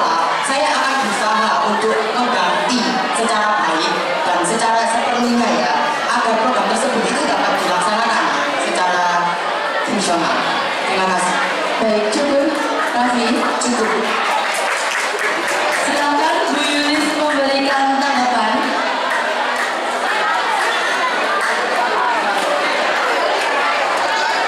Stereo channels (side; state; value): both; identical; correlation 1.00